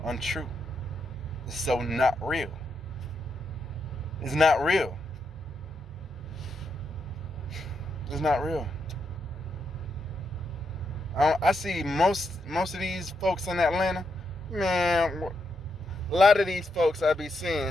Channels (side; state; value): both; normal; correlation 0.81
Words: untrue. It's so not real. It's not real. It's not real. I see most of these folks in Atlanta, man, a lot of these folks I be